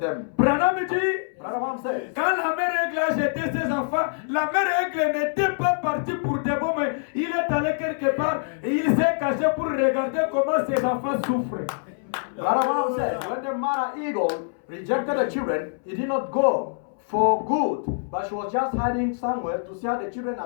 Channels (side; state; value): right; silent; 62 dB below the other